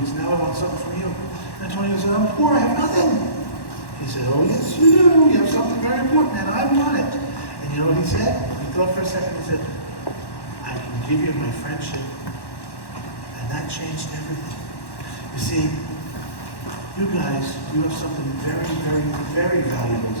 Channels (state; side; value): late; right; 1.1 ms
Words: Now I want something from you." And Antonio said, "I'm poor, I have nothing." He said, "Oh yes you do. You have something very important, and I want it." And you know what he said? He thought for a second. He said, "I can give you my friendship." And that changed everything. You see, you guys, you have something very, very, very valuable